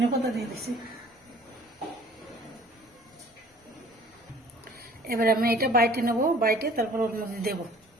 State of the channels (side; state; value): both; normal; correlation 0.51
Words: পাতা দিয়ে দিছি। এবার আমি এটা বাইটে নেবো, বাইটে তারপর ওর মধ্যে দেবো।